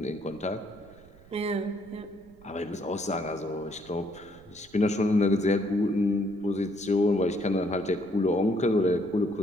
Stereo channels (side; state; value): right; noise; rumble, 25 dB below the sound